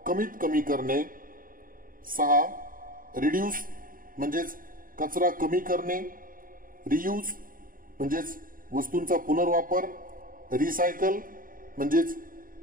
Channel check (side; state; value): left; late; 0.41 ms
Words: कमीत कमी करणे. 6. रिड्यूस म्हणजेच कचरा कमी करणे. रियूज म्हणजेच वस्तूंचा पुनर्वापर. रिसायकल म्हणजेच